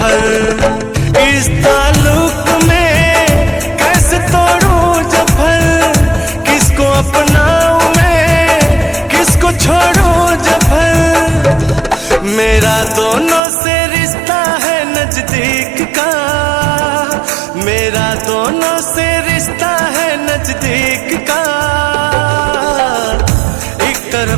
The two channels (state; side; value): drops out; left; at 13.4 s